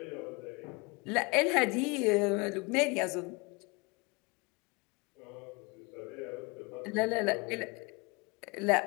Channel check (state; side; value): quieter; right; 27.8 dB